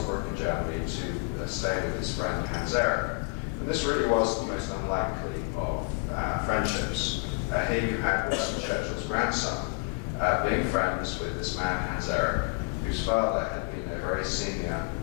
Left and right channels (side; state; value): right; quieter; 31.8 dB